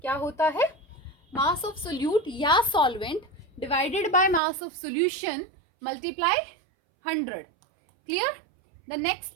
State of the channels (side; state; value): left; drops out; at 4.4 s